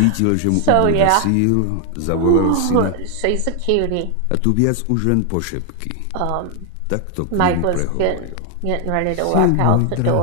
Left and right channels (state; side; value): different; both; correlation 0.00